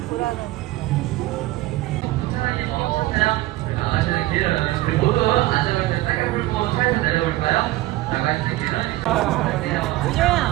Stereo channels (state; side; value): quieter; left; 17.4 dB